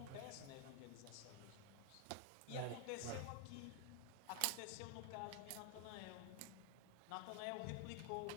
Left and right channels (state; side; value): different; both; correlation 0.00